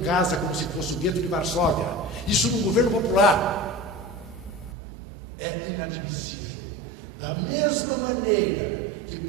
casa como se fosse o gueto de Varsóvia. Isso no governo popular. É inadmissível. Da mesma maneira que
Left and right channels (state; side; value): drops out; left; at 4.8 s